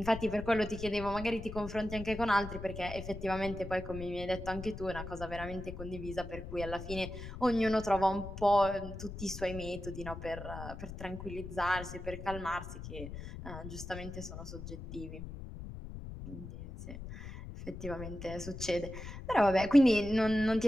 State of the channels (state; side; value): noise; left; rumble, 10 dB below the sound